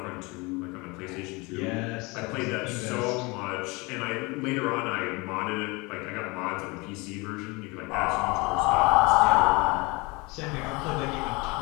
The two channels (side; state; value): right; quieter; 26.1 dB